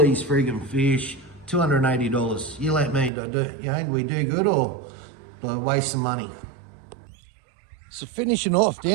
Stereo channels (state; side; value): drops out; left; at 3.1 s